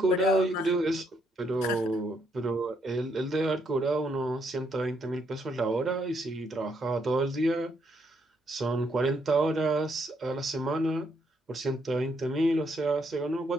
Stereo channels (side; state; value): both; normal; correlation 0.74